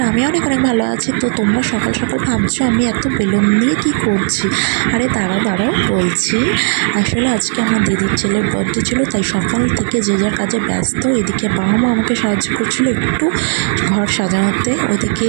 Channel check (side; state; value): left; silent; 61 dB below the other